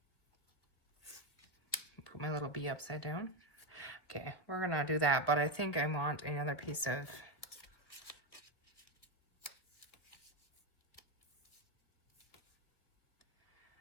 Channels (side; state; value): right; late; 1.6 ms